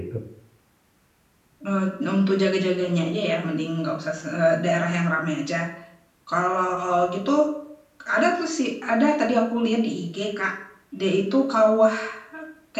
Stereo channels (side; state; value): both; identical; correlation 1.00